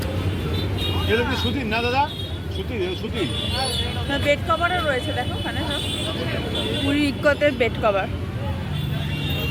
এটা কি সুতির না দাদা? সুতির সুতির। বেড কভারও রয়েছে দেখো ওখানে সব পুরি ইকতের বেড কভার।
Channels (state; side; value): identical; both; correlation 1.00